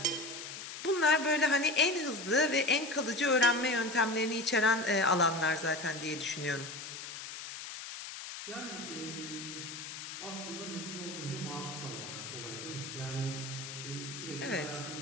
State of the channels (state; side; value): noise; left; hiss, 9 dB below the sound